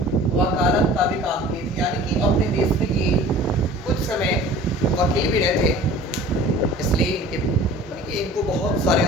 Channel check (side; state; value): both; normal; correlation 0.45